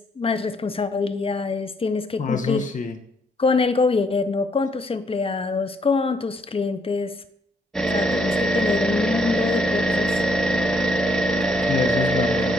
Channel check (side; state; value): both; normal; correlation 0.71